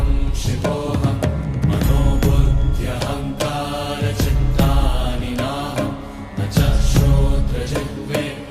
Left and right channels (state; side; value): identical; both; correlation 1.00